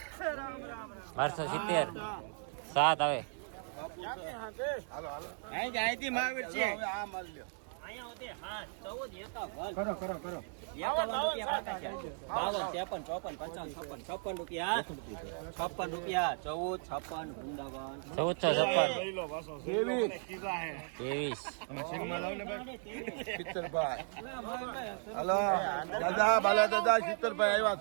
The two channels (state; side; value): silent; left; 54 dB below the other